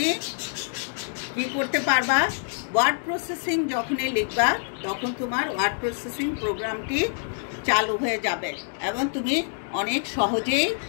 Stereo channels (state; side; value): silent; right; 61 dB below the other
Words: কি করতে পারবা? ওয়ার্ড প্রসেসিং যখনই লিখবা তখন তোমার ওয়ার্ড প্রসেসিং প্রোগ্রামটি চালু হয়ে যাবে এবং তুমি অনেক সহজেই